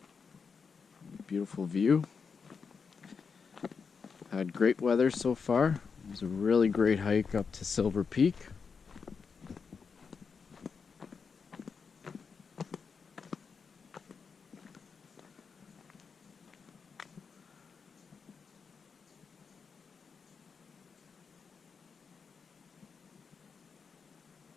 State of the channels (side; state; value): right; quieter; 5.6 dB